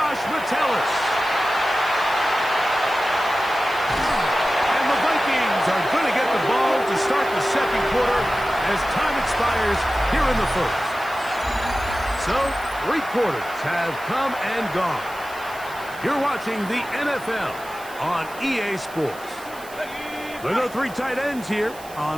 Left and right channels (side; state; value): right; noise; hiss, 19 dB below the sound